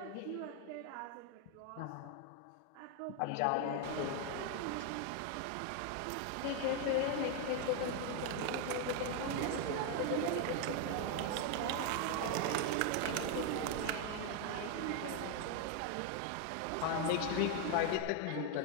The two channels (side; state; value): both; different; correlation 0.01